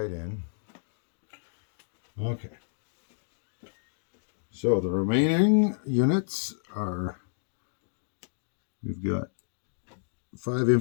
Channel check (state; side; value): silent; right; digital silence